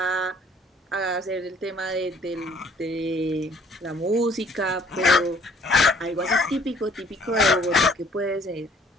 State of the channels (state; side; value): normal; both; correlation 0.59